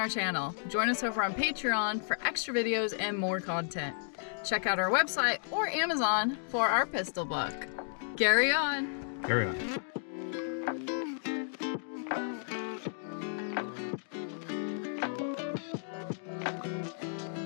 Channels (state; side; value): silent; right; digital silence